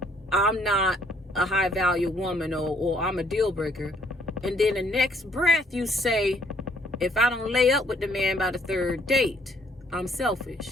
I'm not a high value woman or I'm a deal breaker, and then the next breath you say, if I don't lay up with the man by the third date, I'm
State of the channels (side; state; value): both; normal; correlation 0.65